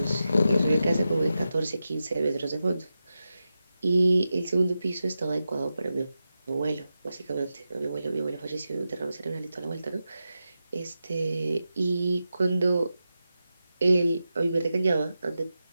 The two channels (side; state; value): both; inverted; correlation -0.90